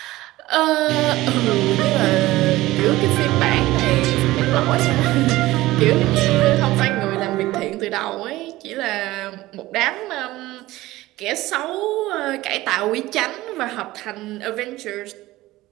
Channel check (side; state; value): left; quieter; 17.7 dB